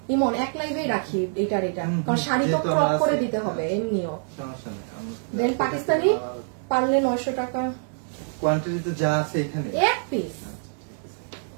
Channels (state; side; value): silent; left; digital silence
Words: ইমন এক লাইভেই রাখি এটার এটা, কারণ শাড়ি তো ক্রপ করে দিতে হবে এমনিও। দেন পাকিস্তানি পারলে 900 টাকা কোয়ান্টিটিতে যা আছে এখানে এক পিস।